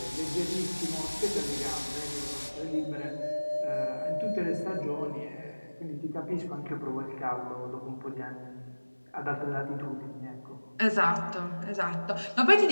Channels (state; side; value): inverted; both; correlation -1.00